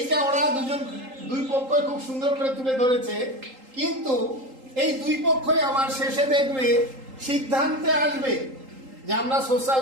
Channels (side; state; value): left; late; 3.8 ms